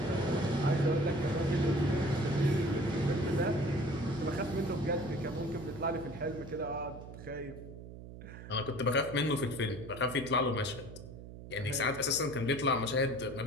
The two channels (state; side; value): noise; right; hum, 13 dB below the sound